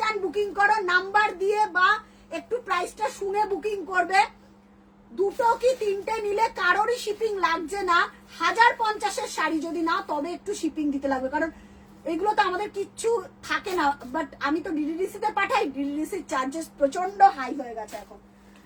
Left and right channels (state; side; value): identical; both; correlation 1.00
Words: বুকিং করো, নাম্বার দিয়ে বা একটু প্রাইসটা শুনে বুকিং করবে। দুটো কি তিনটে নিলে কারোরই শিপিং লাগছে না। 1050-এর শাড়ি যদি না, তবে একটু শিপিং দিতে লাগবে, কারণ এগুলো তো আমাদের কিচ্ছু থাকে না। বাট আমি তো ডিডিডিসি তে পাঠাই, ডিডিডিসির চার্জেস প্রচন্ড হাই হয়ে গেছে এখন।